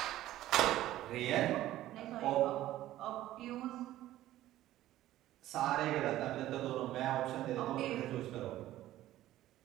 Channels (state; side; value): quieter; left; 14.4 dB